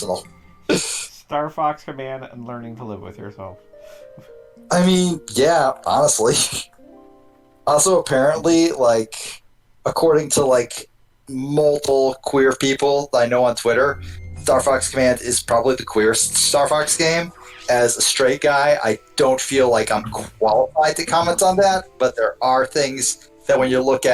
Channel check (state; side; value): identical; both; correlation 1.00